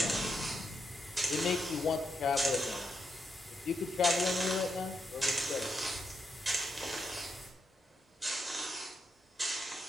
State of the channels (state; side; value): normal; both; correlation 0.83